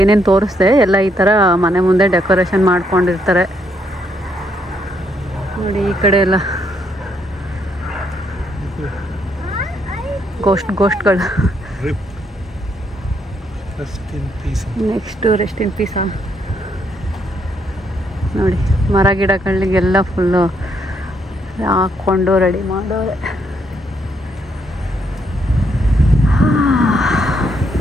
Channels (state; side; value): normal; both; correlation 0.74